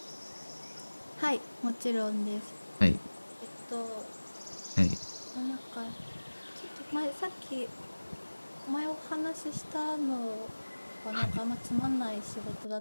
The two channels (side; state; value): both; inverted; correlation -1.00